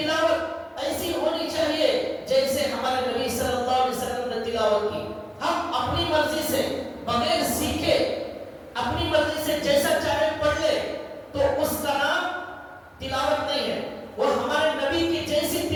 ایسی ہونی چاہیے جیسے ہمارے نبی صلی اللہ علیہ وسلم نے تلاوت کی. ہم اپنی مرضی سے بغیر سیکھے اپنی مرضی سے جیسا چاہے پڑھ لے تو اس کا نام تلاوت نہیں ہے. وہ ہمارے نبی کی جیسی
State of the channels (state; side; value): identical; both; correlation 1.00